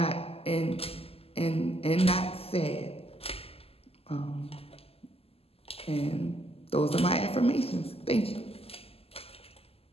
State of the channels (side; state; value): right; late; 0.29 ms